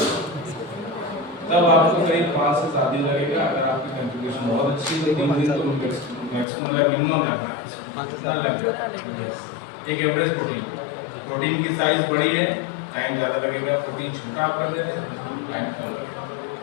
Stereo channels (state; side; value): drops out; right; at 6.5 s